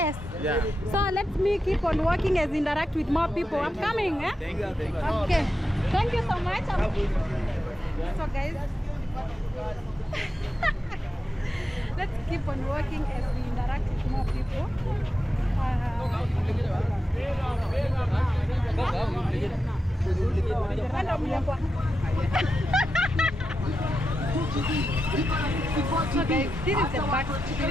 Yeah. So let me keep on working as interact with more people. I'm coming, eh? Thank you. Thank you. Okay. Thank you so much. So guys, let's keep on working as we interact with more people. So guys, this is the back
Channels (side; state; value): both; normal; correlation 0.89